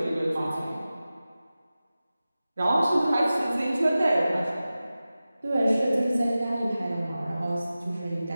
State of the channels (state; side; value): inverted; both; correlation -0.95